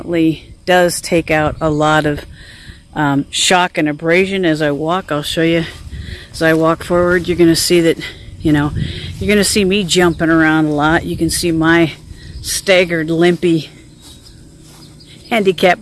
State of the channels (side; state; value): both; identical; correlation 1.00